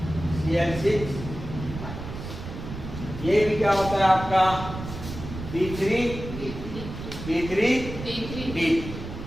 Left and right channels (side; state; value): right; noise; rumble, 9 dB below the sound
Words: minus. ये भी क्या होता है आपका B3 D3